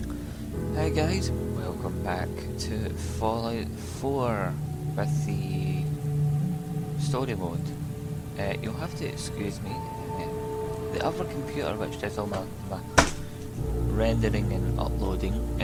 Hi guys, welcome back to Fallout 4 with the story mode. You'll have to excuse me. The other computer which does all my rendering and uploading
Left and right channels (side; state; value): both; identical; correlation 1.00